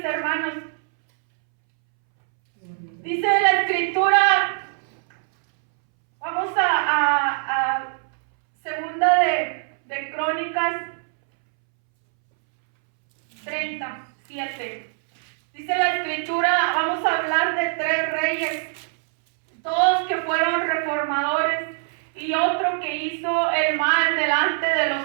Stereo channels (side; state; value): left; silent; 64 dB below the other